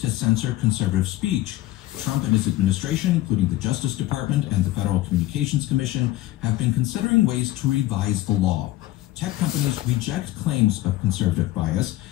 to censor conservative speech. Trump and his administration, including the Justice Department and the Federal Communications Commission, have been considering ways to revise the law. Tech companies reject claims of conservative bias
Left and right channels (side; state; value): right; quieter; 16.0 dB